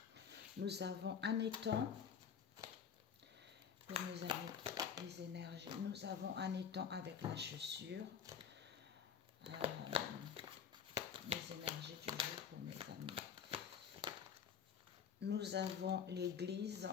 Nous avons un étang. Pour mes amis, les énergies. Nous avons un étang avec la chaussure. Les énergies du jour pour mes amis. Nous avons l'église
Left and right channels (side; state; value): right; quieter; 7.5 dB